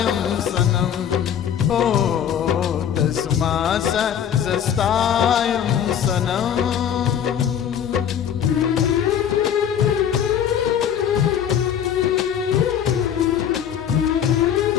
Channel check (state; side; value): quieter; right; 9.1 dB